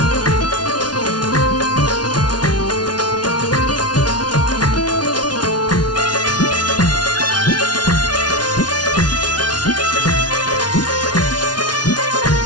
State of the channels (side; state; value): right; late; 0.69 ms